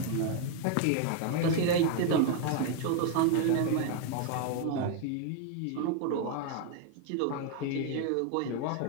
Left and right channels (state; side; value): different; both; correlation 0.01